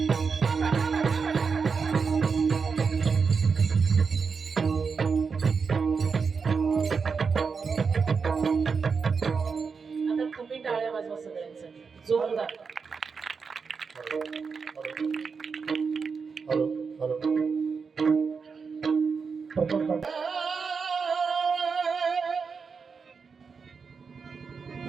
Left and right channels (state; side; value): quieter; left; 5.4 dB